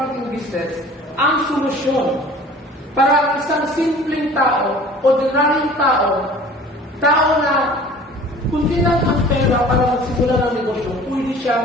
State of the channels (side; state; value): both; normal; correlation 0.46